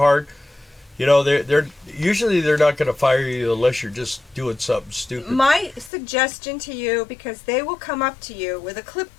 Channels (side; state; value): right; drops out; at 5.9 s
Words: you know, they're usually they're not going to fire you unless you're just doing something stupid. My suggestion to you, because they will come up to you with a